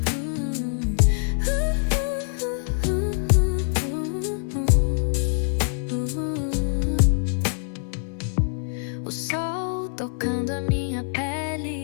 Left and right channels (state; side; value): silent; right; 62 dB below the other